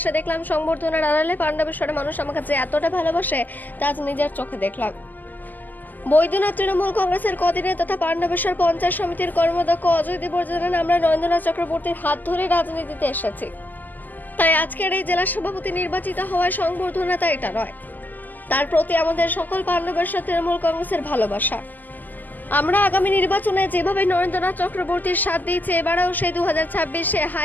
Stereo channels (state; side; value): late; right; 0.085 ms